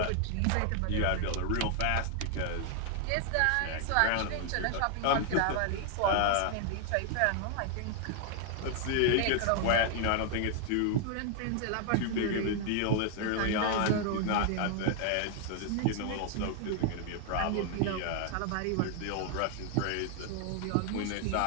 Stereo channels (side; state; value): both; different; correlation 0.00